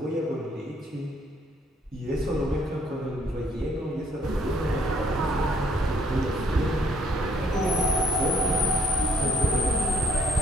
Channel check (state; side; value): normal; both; correlation 0.65